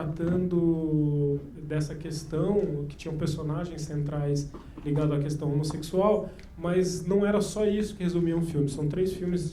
dessa questão, que tinham personagens centrais ligados à questão homossexual, mas não era só isso que resumia um filme. São 3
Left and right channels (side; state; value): both; identical; correlation 1.00